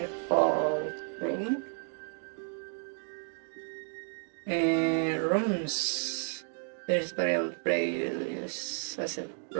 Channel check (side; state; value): left; silent; 56 dB below the other